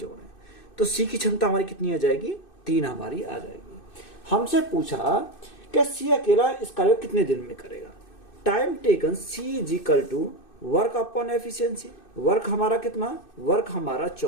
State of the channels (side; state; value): right; late; 2.6 ms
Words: तो सी की क्षमता हमारी कितनी आ जाएगी? 3 हमारी आ जाएगी। हमसे पूछा कि सी अकेला इस कार्य को कितने दिन में करेगा? Time taken c is equal to work upon efficiency. Work हमारा कितना? वर्क हमारा